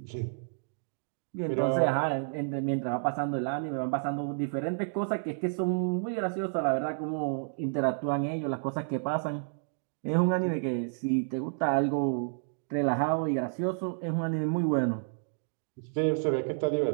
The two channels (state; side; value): silent; left; digital silence